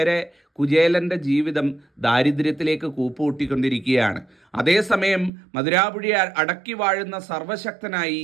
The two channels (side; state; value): left; drops out; at 5.3 s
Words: കുചേലൻ്റെ ജീവിതം ദാരിദ്ര്യത്തിലേക്ക് കൂപ്പുകൂട്ടിക്കൊണ്ടിരിക്കുകയാണ്. അതേസമയം മധുരാപുരി അടക്കി വാഴുന്ന സർവശക്തനായി